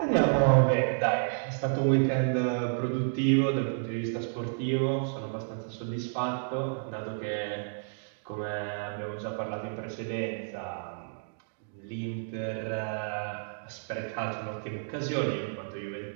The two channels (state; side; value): silent; left; digital silence